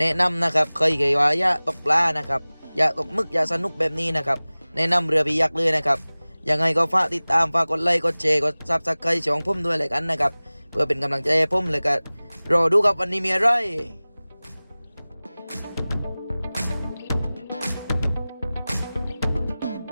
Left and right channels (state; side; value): inverted; both; correlation -0.99